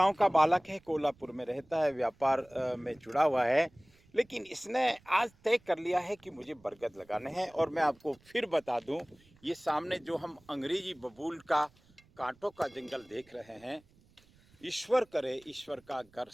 का बालक है, कोल्हापुर में रहता है, व्यापार में जुड़ा हुआ है, लेकिन इसने आज तय कर लिया है कि मुझे बरगद लगाने हैं। और मैं आपको फिर बता दूं, ये सामने जो हम अंग्रेजी बबूल का कांटों का जंगल देख रहे हैं, ईश्वर करे ईश्वर का घर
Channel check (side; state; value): right; noise; rumble, 30 dB below the sound